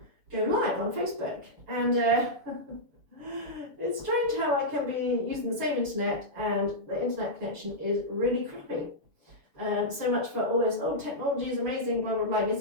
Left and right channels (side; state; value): left; late; 7.0 ms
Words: go live on Facebook, and it's strange how I can be using the same internet and the internet connection is really crappy. So much for all this, oh, technology is amazing, blah, blah, blah. Yes,